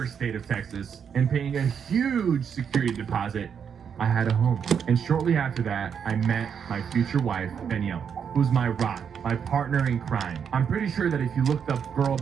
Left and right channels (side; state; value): left; quieter; 7.4 dB